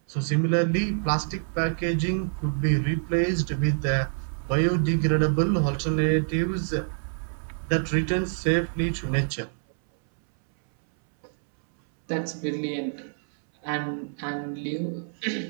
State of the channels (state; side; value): silent; left; 61 dB below the other